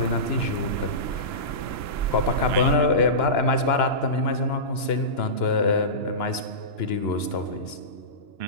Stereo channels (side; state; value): right; late; 2.9 ms